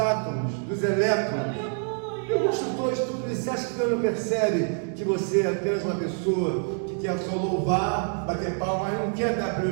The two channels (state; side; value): silent; left; 56 dB below the other